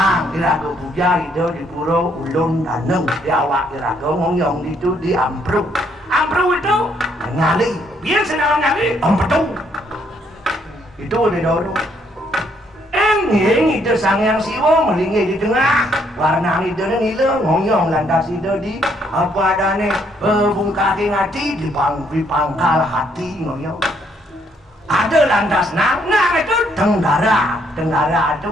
iraga puja itu di pura Ulun Daneng, di awak iraga ngomong itu di Ampru itu nyali, biasa dalam nyali, Ampetu, itu di Doro. Enging itu sangyang Siwo melingih di tengah warna itu nila ngoyong lantas itu di apa adane bungkaki ngati di pangkal hati ngoyong ada lantas nang itu tenggara itu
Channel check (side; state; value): both; normal; correlation 0.70